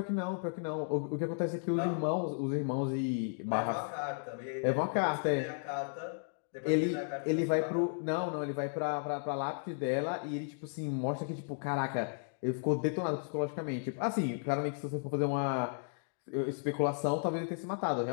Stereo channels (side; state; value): right; silent; digital silence